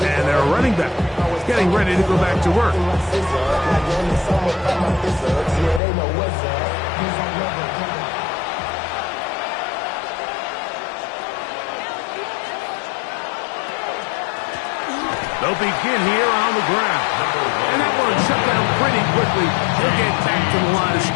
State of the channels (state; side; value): drops out; right; at 5.8 s